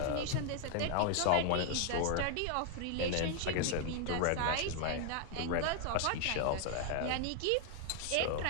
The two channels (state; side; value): different; both; correlation 0.00